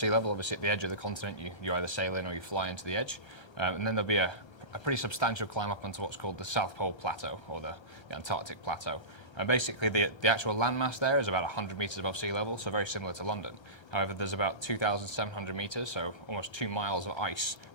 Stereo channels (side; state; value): right; late; 1.3 ms